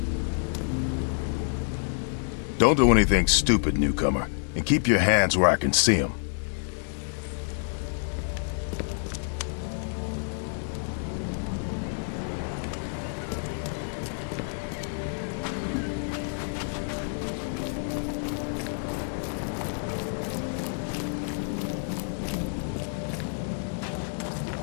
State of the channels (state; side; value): silent; right; 59 dB below the other